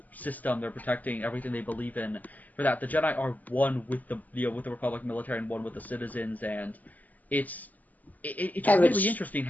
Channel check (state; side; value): late; right; 0.080 ms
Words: system. They're protecting everything they believe in. For that, the Jedi are one with the Republic military and one with the citizens, and it's really interesting